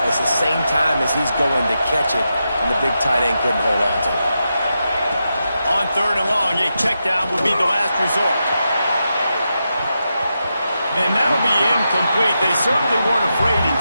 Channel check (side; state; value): both; inverted; correlation -0.87